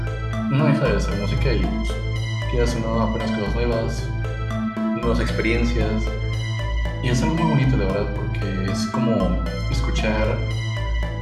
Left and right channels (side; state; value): both; identical; correlation 1.00